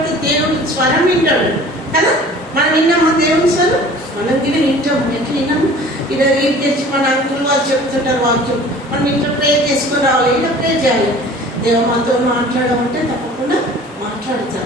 దేవుడు స్వరం వింటాడు కదా. మనం విన్నామా దేవుని స్వరం? మనం కూడా వింటాము. ఎట్లా విన్నాము? ఇలా రీడ్ తెచ్చి మన అంకులు వాళ్ళు చెప్తుంటారు వాక్యం. మనం ఇంట్లో ప్రేర్ చేసుకొని రావాలి. ఇలా ప్రేర్ చేయాలి. దేవ మాతో మాట్లాడమంటే తప్పకుండా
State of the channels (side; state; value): both; normal; correlation 0.46